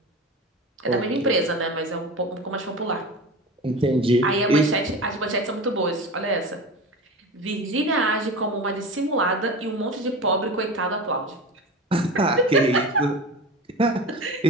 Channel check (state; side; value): normal; both; correlation 0.30